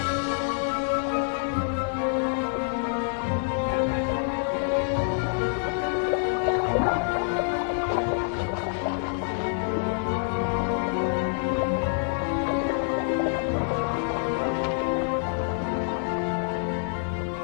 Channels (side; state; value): right; silent; digital silence